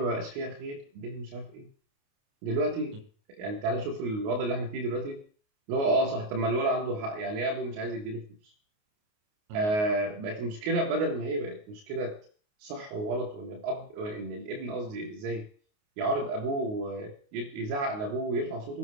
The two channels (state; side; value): late; left; 28 ms